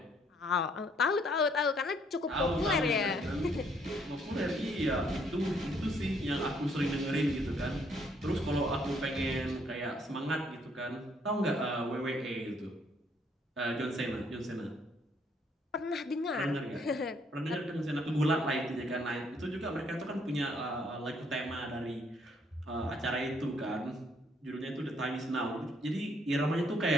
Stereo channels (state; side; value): normal; both; correlation 0.67